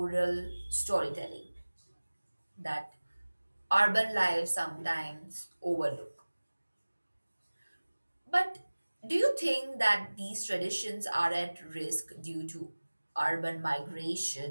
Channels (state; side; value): inverted; both; correlation -1.00